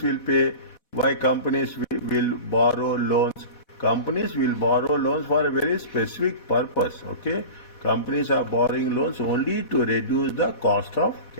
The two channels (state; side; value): late; right; 4.1 ms